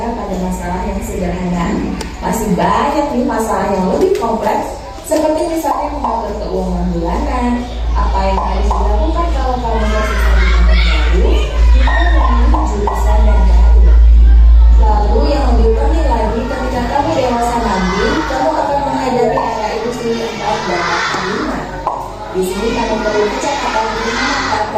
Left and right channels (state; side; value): identical; both; correlation 1.00